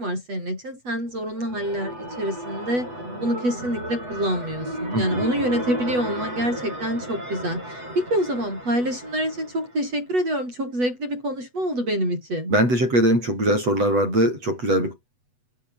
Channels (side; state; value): left; late; 8.1 ms